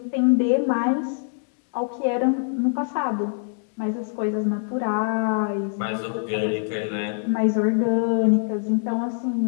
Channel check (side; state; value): right; silent; digital silence